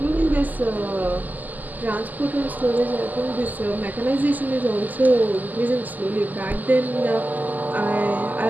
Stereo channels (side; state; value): left; late; 0.082 ms